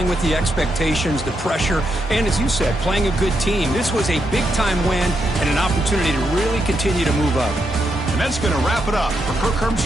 with the expectations, the pressure, and as you said, playing a good team. This was a big-time win and an opportunity to really continue to move up. And that's going to wrap it up. For Kirk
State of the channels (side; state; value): both; normal; correlation 0.81